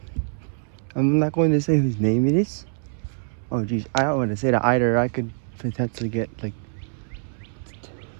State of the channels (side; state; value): left; silent; 62 dB below the other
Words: I'm not going to say whose name it is. Oh geez, I don't want to say that either. I could potentially get like